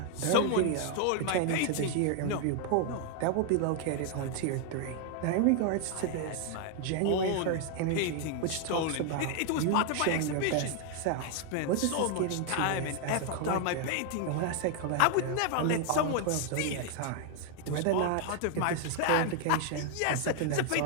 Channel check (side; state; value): both; different; correlation 0.00